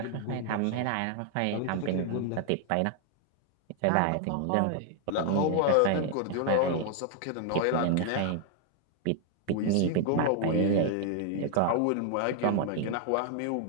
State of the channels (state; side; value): different; both; correlation 0.00